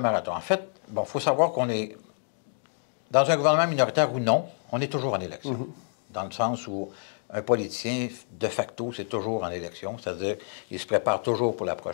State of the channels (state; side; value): silent; right; digital silence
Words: marathon. En fait, il faut savoir qu'on est, dans un gouvernement minoritaire ou non, on est toujours en élection. Dans le sens où un politicien, de facto, c'est toujours en élection, c'est-à-dire qu'il se prépare toujours pour la